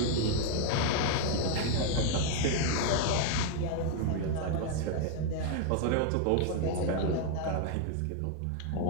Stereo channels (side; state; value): both; different; correlation 0.00